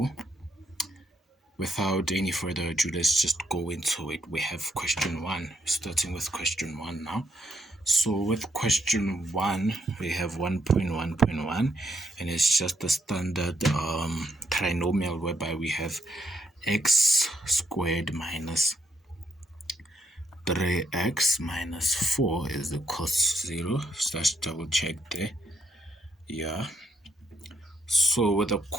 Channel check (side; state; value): both; normal; correlation 0.77